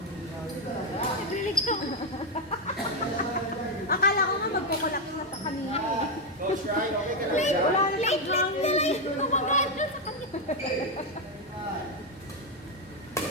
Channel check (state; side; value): normal; both; correlation 0.04